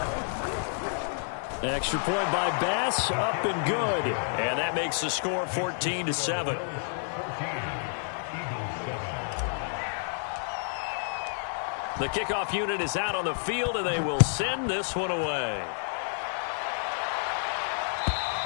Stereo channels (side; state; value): right; silent; 58 dB below the other